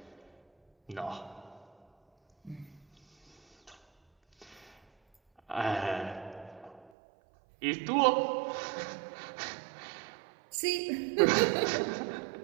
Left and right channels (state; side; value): drops out; left; at 6.9 s